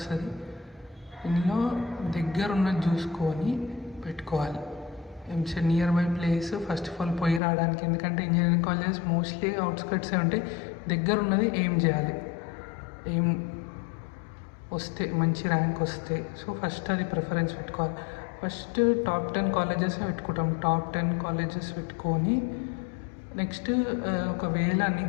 ఇందులో దగ్గర ఉన్నది చూసుకొని పెట్టుకోవాలి. EAMCET near by place first of all పోయి రావడానికి, ఎందుకంటే ఇంజనీరింగ్ కాలేజెస్ మోస్ట్లీ అవుట్స్కట్సే ఉంటాయి. దగ్గర ఉన్నది ఏం చేయాలి, ఏం వస్తే మంచి ర్యాంక్ వస్తే, సో ఫస్ట్ అది ప్రిఫరెన్స్ పెట్టుకోవాలి. ఫస్ట్ టాప్ 10 కాలేజెస్ పెట్టుకుంటాం. టాప్ 10 కాలేజెస్ పెట్టుకొని నెక్స్ట్ ఒకవేళ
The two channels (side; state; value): right; drops out; at 7.4 s